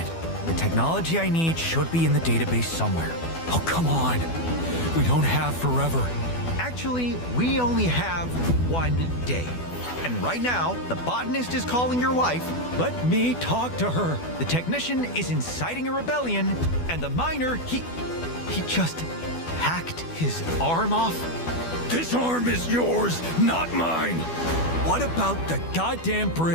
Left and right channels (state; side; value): late; right; 12 ms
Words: The technology I need should be in the database somewhere. Oh, come on. We don't have forever. Actually, we only have 1 day. And right now, the botanist is calling your wife. Let me talk to her. The technician is inciting a rebellion, and the miner, he just hacked his arm off. This arm is yours, not mine. What about the goddamn